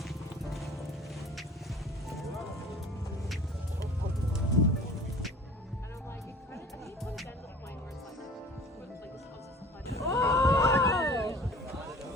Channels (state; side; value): normal; both; correlation 0.44